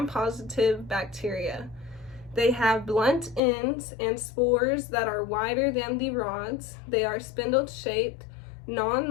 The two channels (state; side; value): drops out; right; at 3.4 s